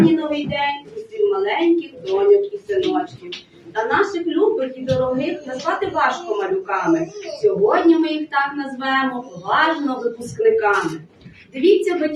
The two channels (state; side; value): identical; both; correlation 1.00